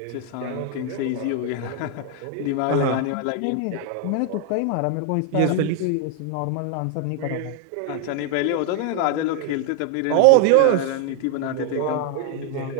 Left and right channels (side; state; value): both; different; correlation 0.00